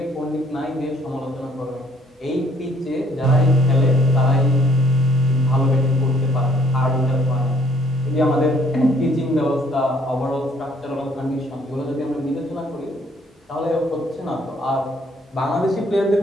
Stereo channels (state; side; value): normal; both; correlation 0.63